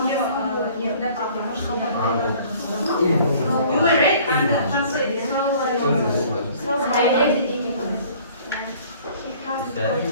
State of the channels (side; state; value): both; inverted; correlation -0.53